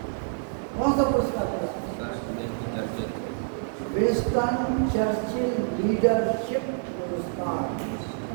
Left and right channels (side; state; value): left; silent; 60 dB below the other